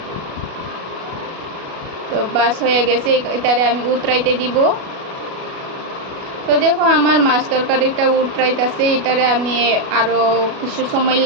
তো বাস হয়ে গেছে, এটারে আমি উতরাইতে দিব। তো দেখো আমার মাছ তরকারিটা উতরাইতেছে, এটারে আমি আরও কিছু সময়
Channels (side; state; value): left; late; 37 ms